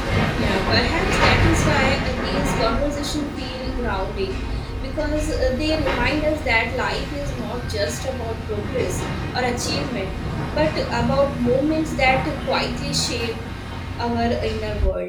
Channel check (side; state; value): both; identical; correlation 1.00